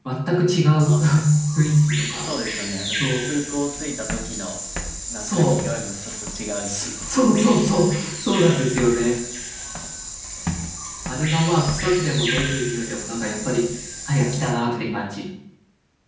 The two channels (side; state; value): both; identical; correlation 1.00